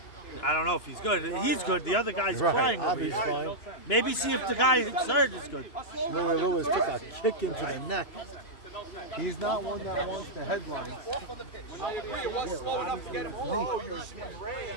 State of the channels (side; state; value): right; late; 2.9 ms